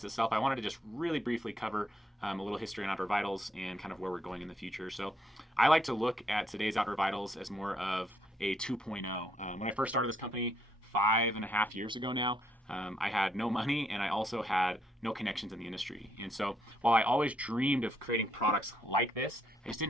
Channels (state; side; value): normal; both; correlation 0.73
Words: itself, I wanted to just really briefly cover a little history on Outdoor Vitals and kind of where we're going in the future. So I like to look at today's Outdoor Vitals as more of a 2.0. When I first started this company 5.5 years ago now, I had no money and I also had no connections in the industry. And so while I always dreamed of creating products like this, I just